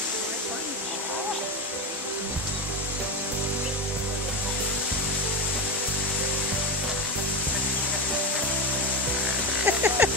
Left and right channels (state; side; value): normal; both; correlation 0.15